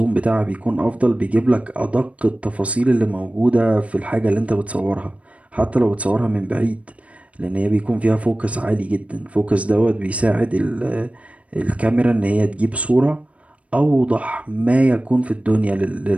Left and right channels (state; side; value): late; left; 0.065 ms